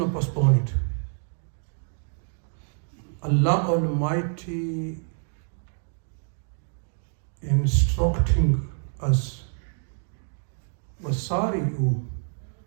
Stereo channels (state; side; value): silent; left; 60 dB below the other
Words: postpone it. Allah Almighty instructing us, وَسَارِعُوا